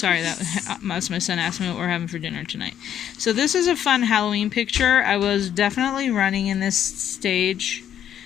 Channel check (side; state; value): right; quieter; 10.0 dB